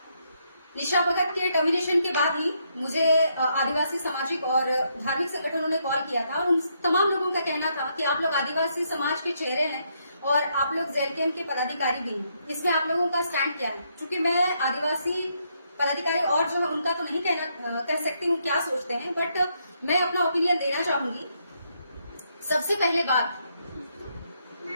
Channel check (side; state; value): both; inverted; correlation -0.76